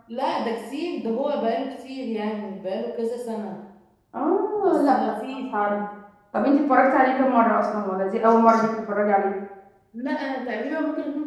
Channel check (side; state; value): both; identical; correlation 1.00